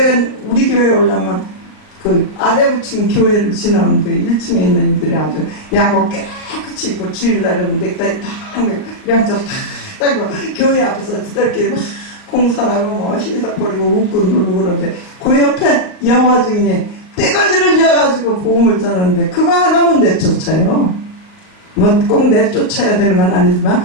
우리 교회에 오려면 그 아래 부층 교회를 지나오는데 1층에 있는 이들이 아주 양복 깨끗이 입고 주일날은 넥타이 딱 양쪽 딱 따고 교회 앞에서 지들끼리 막 공산하고 뭐 희석거리고 웃고 놀고 그러는데 그 옆에 여호와 증인이 떼거지를 지어가지고 복음을 전하는데 그거 하나 못 내쫓아요. 뭐 꼭 내쫓아야 되는 건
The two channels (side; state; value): right; late; 39 ms